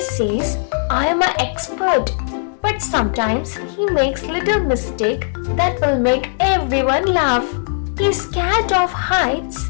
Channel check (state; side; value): silent; right; digital silence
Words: says, "I am an expert," but sometimes he makes little mistakes that will make everyone laugh. He's scared of heights,